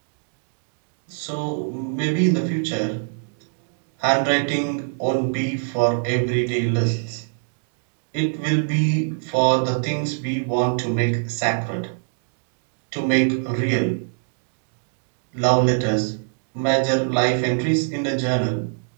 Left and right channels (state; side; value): silent; left; 63 dB below the other